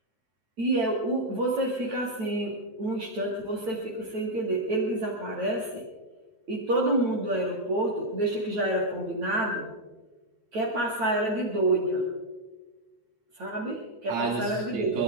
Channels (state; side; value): late; left; 9.0 ms